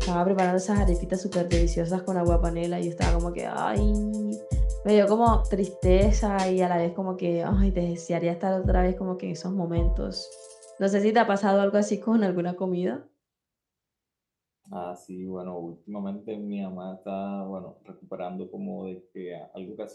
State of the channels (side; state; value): both; identical; correlation 1.00